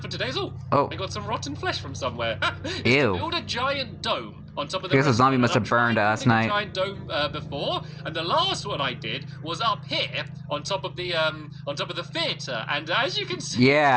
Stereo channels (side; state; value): both; identical; correlation 1.00